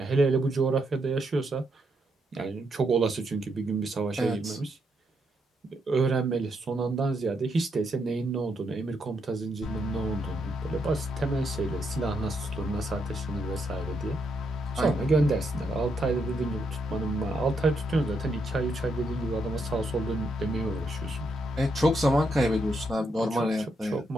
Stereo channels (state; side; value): normal; both; correlation 0.79